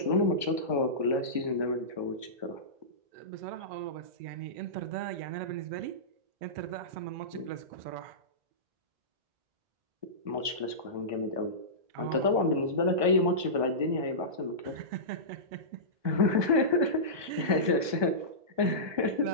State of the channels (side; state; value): left; late; 1.2 ms